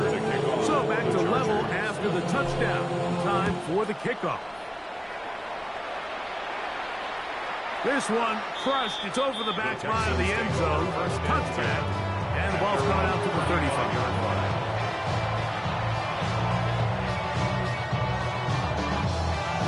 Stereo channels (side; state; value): both; identical; correlation 1.00